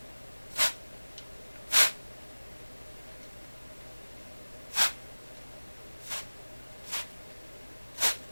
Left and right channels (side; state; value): both; inverted; correlation -1.00